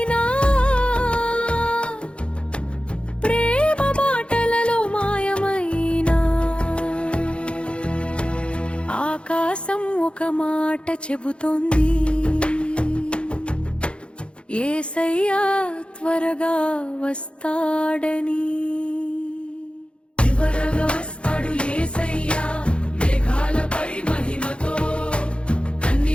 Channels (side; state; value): right; late; 0.058 ms